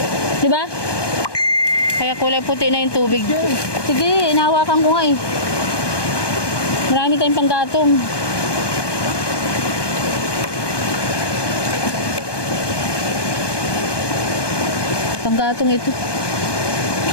Di ba? Kaya kulay puti na yung tubig. Sige, inahawakan ko nga eh. Marami tayong panggatong. Panggatong ito.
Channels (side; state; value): right; late; 1.2 ms